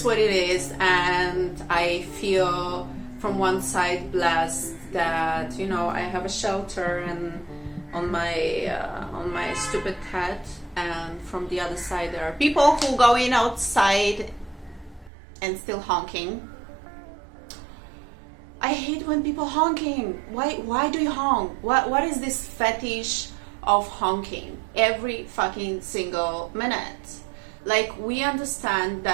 what it is, and I feel from one side blessed that, you know, I have a shelter and on my stupid head, and from the other side there are people who go in outside and still honking. I hate when people honking. Why do you honk? What is this fetish of honking every fucking single minute? Like, we understand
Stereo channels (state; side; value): drops out; left; at 15.1 s